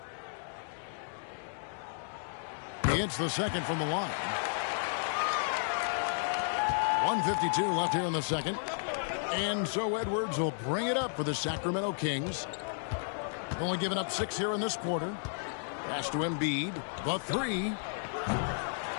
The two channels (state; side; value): silent; right; digital silence